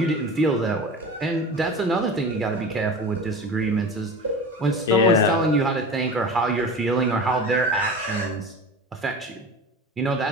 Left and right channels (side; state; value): both; normal; correlation 0.33